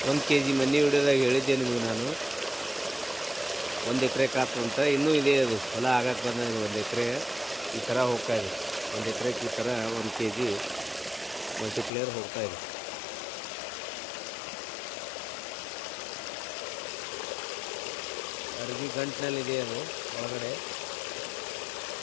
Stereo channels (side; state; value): right; drops out; at 11.9 s